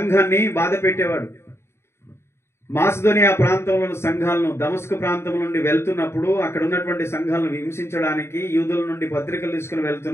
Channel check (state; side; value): late; right; 0.12 ms